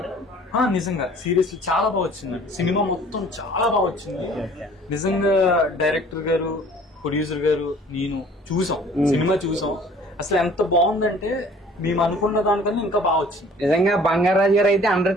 నిజంగా సీరియస్లీ చాలా బాగా వచ్చింది. సినిమా మొత్తం చాలా బాగా వచ్చింది. నిజంగా డైరెక్టర్ గారు, ప్రొడ్యూసర్ గారు, నేను చూసాం, సినిమా చూసాం. అసలు ఎంత బాగుందంటే మేము అనుకున్న దానికన్నా ఇంకా బాగా వచ్చింది. నిజంగా బంగారాజు గారు అయితే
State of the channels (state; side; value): normal; both; correlation 0.52